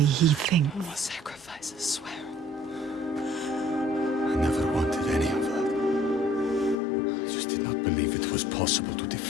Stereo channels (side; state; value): right; drops out; at 6.8 s